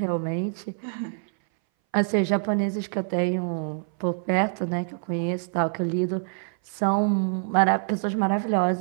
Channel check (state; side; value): silent; left; 60 dB below the other